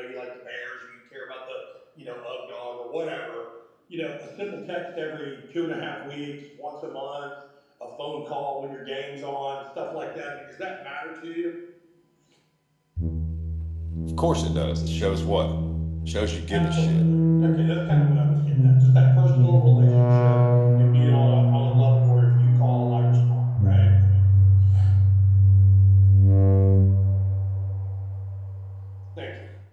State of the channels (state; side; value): identical; both; correlation 1.00